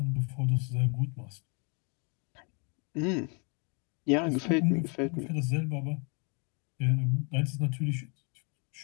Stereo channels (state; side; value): quieter; right; 35.0 dB